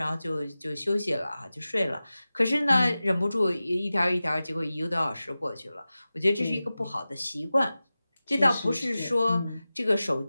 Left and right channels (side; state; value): both; inverted; correlation -0.96